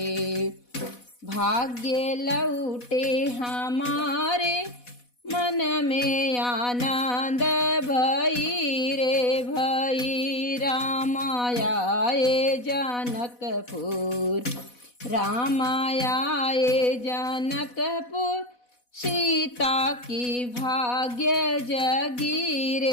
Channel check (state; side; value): late; right; 4.1 ms